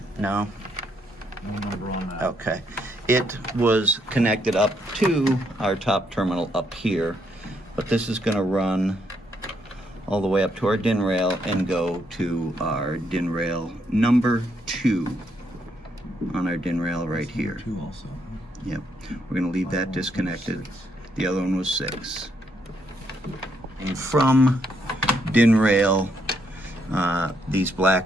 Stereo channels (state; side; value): normal; both; correlation 0.75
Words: No? No number on that. Okay. It was connected up to our top terminal up here, but this is going to run all the way up to our DIN rail and go to our DIN rail number 2 on our DIN rail right here. 2 also. Yep. We're going to leave that disconnected. The other one was 6. And from DIN rail, these